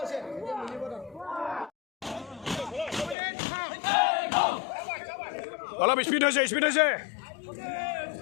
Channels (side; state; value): right; drops out; at 3.2 s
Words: অলপ স্পীড হৈছে